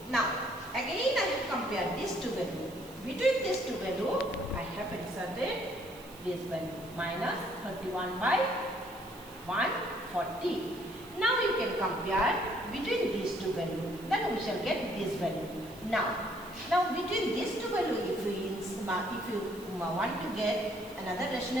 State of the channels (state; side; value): noise; right; hiss, 20 dB below the sound